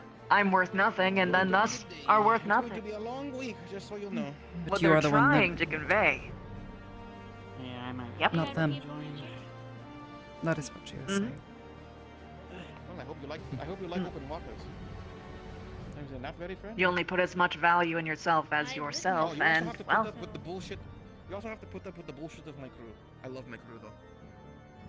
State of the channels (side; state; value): both; identical; correlation 1.00